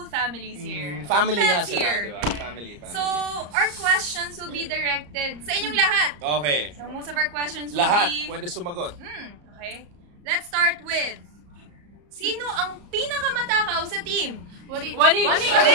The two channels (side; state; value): left; late; 34 ms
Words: family's here. Family nga Pets sila, here. di ba? Family. So, our questions will be directed sa inyong lahat. Okay. So, most of our questions will Lahat be... pwede sumagot. Okay. Let's start with... Sino ang pinakamatakaw sa team? Wani! Ano yun?